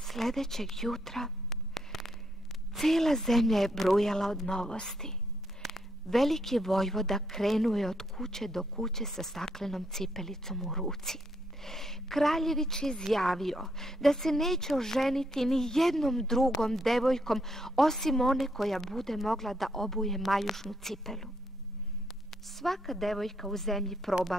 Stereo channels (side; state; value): both; normal; correlation 0.75